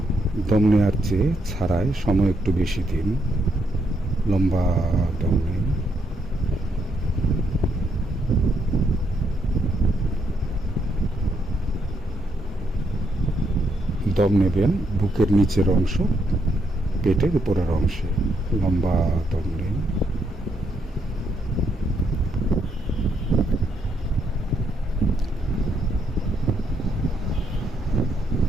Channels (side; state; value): both; normal; correlation 0.76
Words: দম নেওয়ার চেয়ে ছাড়ায় সময় একটু বেশি দিন। লম্বা দম নিন। দম নেবেন বুকের নিচের অংশ, পেটের উপরের অংশে। লম্বা দম নিন।